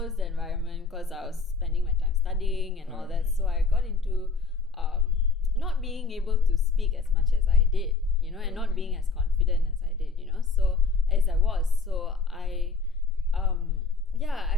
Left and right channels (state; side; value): quieter; right; 4.3 dB